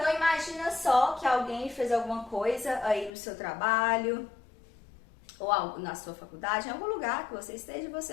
imagina só que alguém fez alguma coisa aí no seu trabalho, ou algo na sua faculdade, em algum lugar que você esteja e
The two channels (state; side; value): drops out; right; at 3.1 s